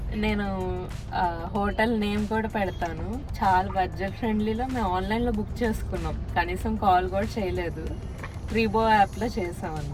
నేను హోటల్ నేమ్ కూడా పెడతాను, చాలా బడ్జెట్ ఫ్రెండ్లీలో. మేము ఆన్లైన్లో బుక్ చేసుకున్నాం, కనీసం కాల్ కూడా చేయలేదు, రీబో యాప్లో చేసాం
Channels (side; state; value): both; identical; correlation 1.00